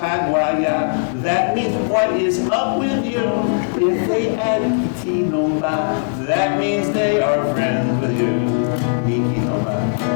that means what is up with you? If they add Kiti Nomba, that means they are friends with you. Niki Nomba,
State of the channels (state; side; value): silent; right; digital silence